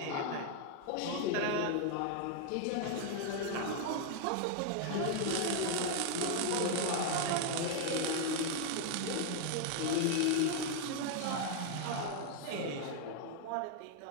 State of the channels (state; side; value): different; both; correlation 0.00